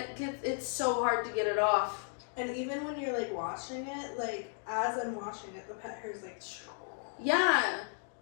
it's so hard to get it off. And even when you're like washing it, like as I'm washing it, the pet hair is like. Yeah,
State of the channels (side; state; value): right; silent; 55 dB below the other